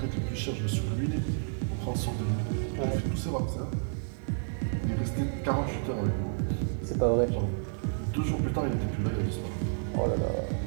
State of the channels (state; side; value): silent; left; digital silence